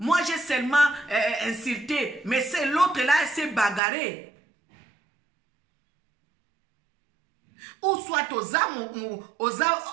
j'ai seulement insulté, mais c'est l'autre là, elle s'est bagarrée. Ou soit aux âmes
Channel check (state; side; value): drops out; left; at 3.8 s